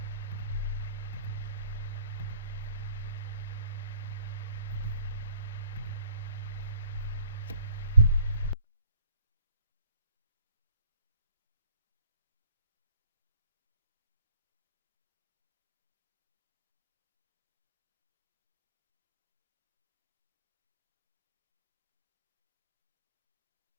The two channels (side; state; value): both; inverted; correlation -0.57